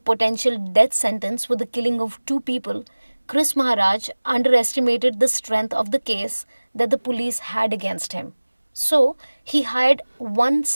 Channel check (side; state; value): both; inverted; correlation -1.00